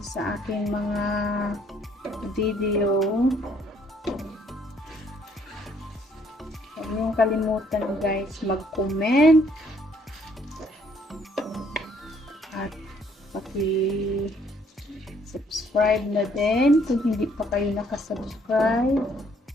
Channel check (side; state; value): both; normal; correlation 0.65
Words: sa aking mga video. Huwag niyong kalimutan guys mag-comment at paki-subscribe na din kung hindi pa kayo nakasubscribe.